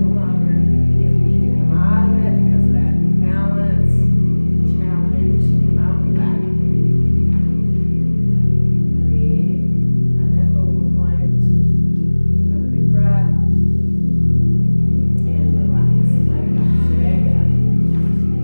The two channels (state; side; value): inverted; both; correlation -1.00